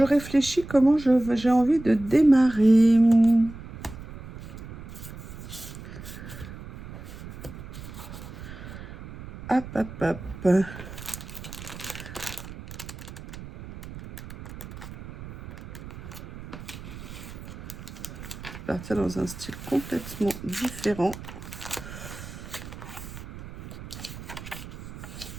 réfléchis comment j'ai envie de démarrer. Hop, hop, hop. Partir dans un style complètement différent.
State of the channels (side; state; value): right; noise; rumble, 13 dB below the sound